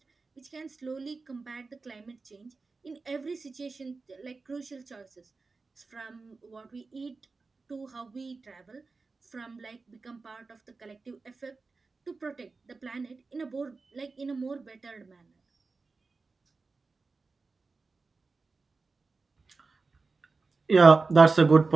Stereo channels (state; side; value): quieter; left; 4.0 dB